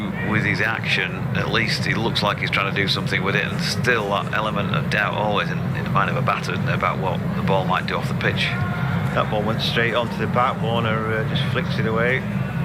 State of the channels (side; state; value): both; identical; correlation 1.00